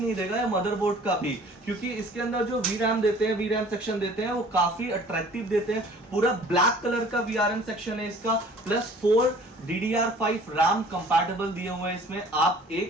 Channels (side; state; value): both; normal; correlation 0.51